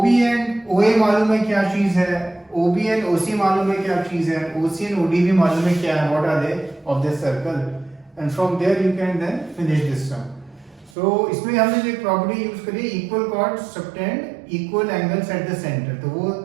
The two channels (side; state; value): left; drops out; at 11.0 s